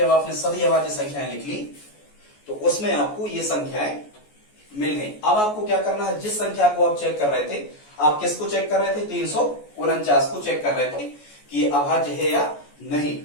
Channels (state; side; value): late; right; 14 ms